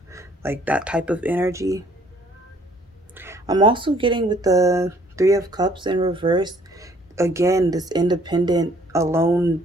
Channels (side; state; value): both; normal; correlation 0.60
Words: like that type of energy. I'm also getting with the 3 of Cups in reverse, again, this independent, alone